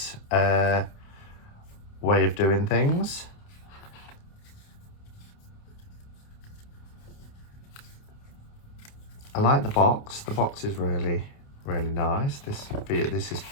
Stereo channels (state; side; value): late; right; 29 ms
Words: way of doing things. I like the box. The box is really, really nice. This is